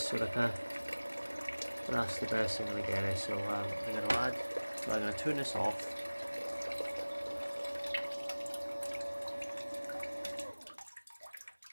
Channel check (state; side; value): inverted; both; correlation -1.00